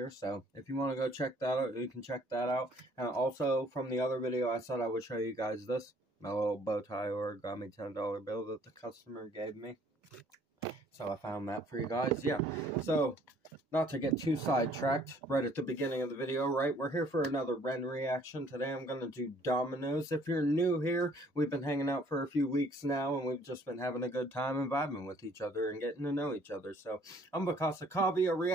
so if you want to go check that out, you can check that out. And also, from the other video, I said I would show you guys this, my little bow tie origami $10 bill that the customer gave me. So I found that for you guys, yeah. So, not to get too sidetracked right at the beginning of the video, right? We're here for another Ren reaction. Today I'm going to do Dominoes. If you're new here, we've been hanging out for a few weeks now, and we've just been having a good time and vibing with each other and getting to know each other. So, I'm Bakasa Kavi. A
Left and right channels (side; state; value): both; normal; correlation 0.60